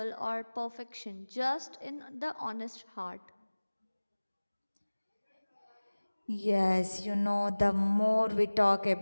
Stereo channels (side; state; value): both; inverted; correlation -1.00